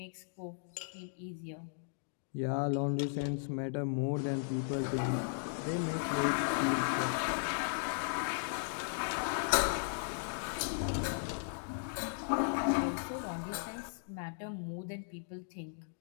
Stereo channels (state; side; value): silent; right; digital silence